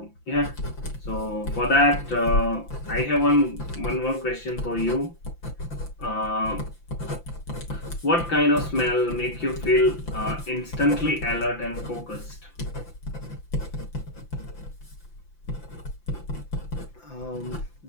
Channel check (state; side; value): late; right; 5.9 ms